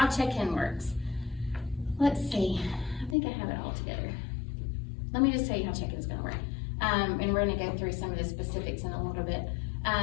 check-in works. Let's see, I think I have it all together. Let me just tell you how check-in is gonna work. And we're gonna go through some of the specifics in a little bit.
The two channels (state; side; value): drops out; right; at 3.2 s